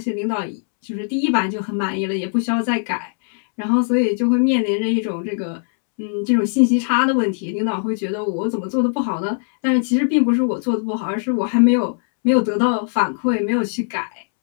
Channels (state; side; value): silent; right; 66 dB below the other